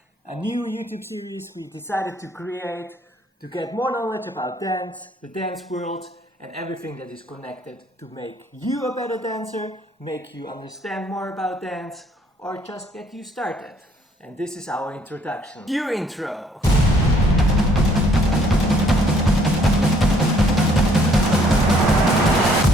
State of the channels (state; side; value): normal; both; correlation 0.63